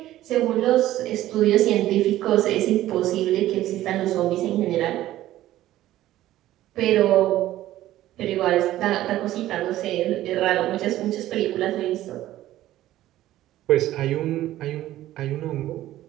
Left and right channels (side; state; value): left; quieter; 14.3 dB